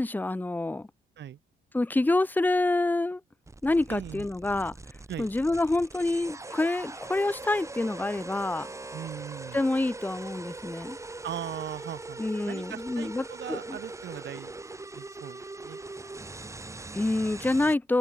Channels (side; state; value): both; normal; correlation 0.90